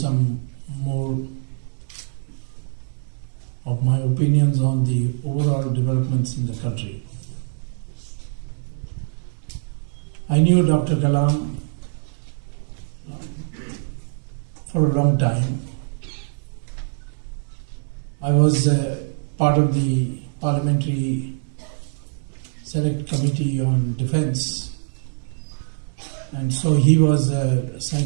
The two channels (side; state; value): left; silent; digital silence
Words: more of my opinions on the overall developments in the country. I knew Dr. Kalam for a long time. I was part of the Parliamentary Select Committee on Defence, and so he was a